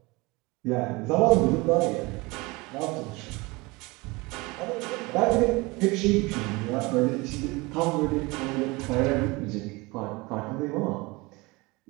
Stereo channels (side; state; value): left; quieter; 24.0 dB